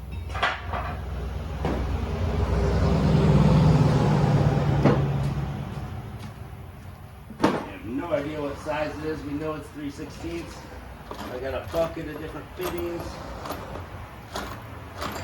No idea what size it is. We know it's 3/16. I got a bucket of different fittings.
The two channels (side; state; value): both; identical; correlation 1.00